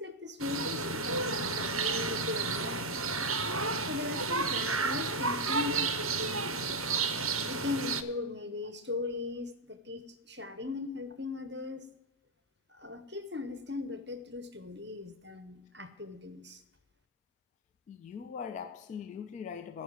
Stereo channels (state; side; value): normal; both; correlation 0.02